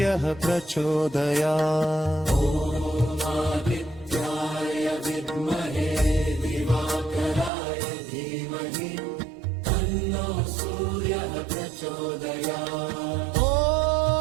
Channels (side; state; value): left; drops out; at 7.5 s